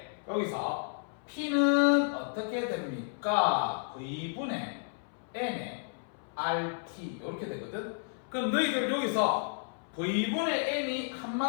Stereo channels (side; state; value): right; silent; 56 dB below the other